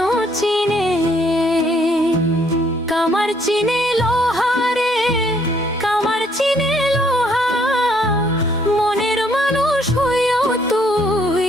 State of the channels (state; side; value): normal; both; correlation 0.67